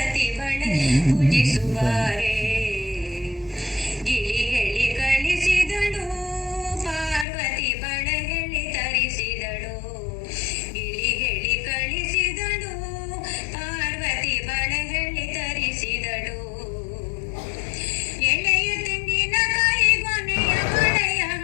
ಬಳೆ ಪೂಜಿಸುವಾರೆ. ಗಿಳಿ ಹೇಳಿ ಕಳಿಸಿದಳು ಪಾರ್ವತಿ ಬಳೆ ಹೇಳಿ ತರಿಸಿದಳು. ಗಿಳಿ ಹೇಳಿ ಕಳಿಸಿದಳು ಪಾರ್ವತಿ ಬಳೆ ಹೇಳಿ ತರಿಸಿದಳು. ಎಳೆಯ ತೆಂಗಿನಕಾಯಿ ಗೊನೆಯ ಬಳೆಯ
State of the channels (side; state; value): right; drops out; at 7.2 s